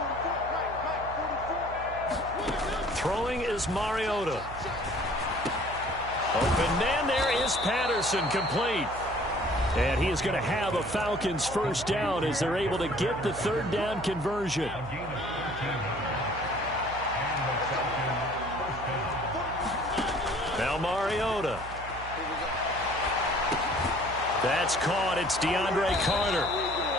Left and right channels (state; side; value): noise; right; hum, 12 dB below the sound